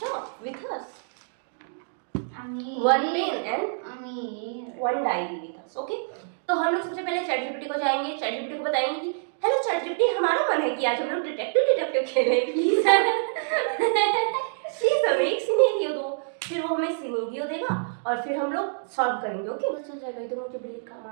with us, one pen and one diary with us. Okay, तो हम लोग सबसे पहले ChatGPT को जाएंगे, ChatGPT को बताएंगे कि हेलो ChatGPT, हमारा मन है कि आज हम लोग डिटेक्टिव खेलें, प्लीज हमें एक सिनेरियो दो। फिर वो हमें सिनेरियो देगा और फिर हम लोग सॉल्व करेंगे। ओके, बस हो जाएगा। इधर मुझे बिल्ली का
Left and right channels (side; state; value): left; silent; digital silence